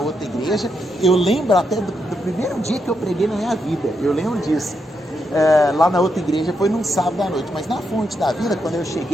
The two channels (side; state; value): both; normal; correlation 0.82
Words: igreja. Eu lembro até do primeiro dia que eu preguei na minha vida. Eu lembro disso. Lá na outra igreja foi num sábado à noite. Mas na Fonte da Vida, quando eu